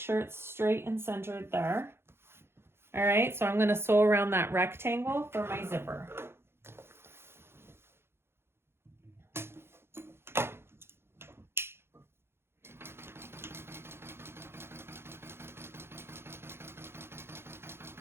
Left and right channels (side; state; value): left; late; 0.12 ms